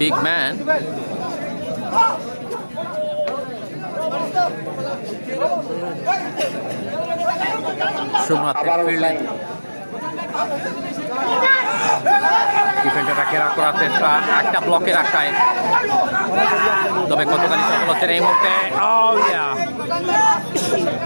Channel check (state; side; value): inverted; both; correlation -1.00